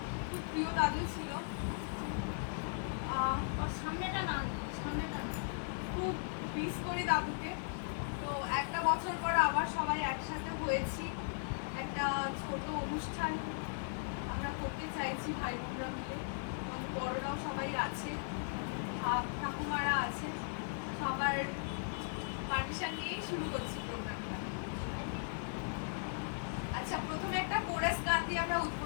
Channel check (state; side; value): silent; right; 53 dB below the other